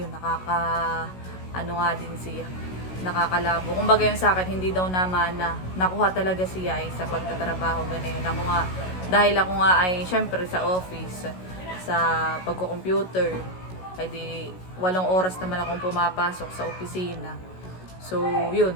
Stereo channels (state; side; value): late; right; 16 ms